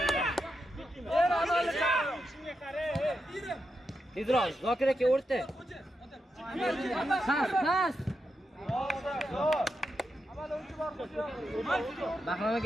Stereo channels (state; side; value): normal; both; correlation 0.86